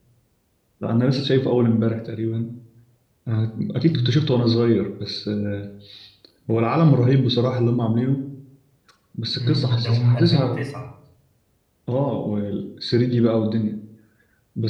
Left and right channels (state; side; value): identical; both; correlation 1.00